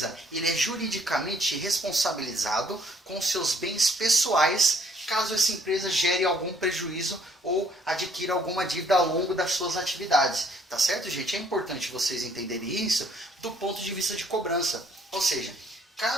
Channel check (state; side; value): normal; both; correlation 0.64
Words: ele é juridicamente responsabilizado com seus bens pessoais, caso essa empresa gere algum prejuízo ou adquira alguma dívida ao longo das suas atividades. Tá certo, gente? É importante vocês entenderem isso do ponto de vista de cobrança. Ou seja,